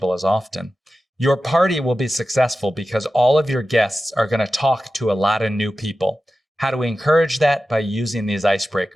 as often. Your party will be successful because all of your guests are going to talk to a lot of new people. How do we encourage that? By using these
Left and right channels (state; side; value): normal; both; correlation 0.93